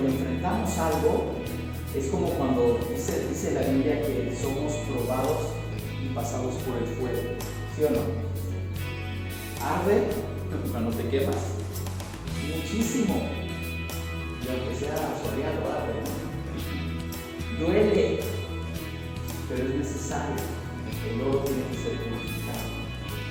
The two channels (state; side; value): identical; both; correlation 1.00